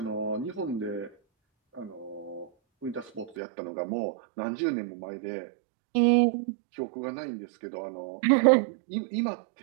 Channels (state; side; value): drops out; left; at 3.4 s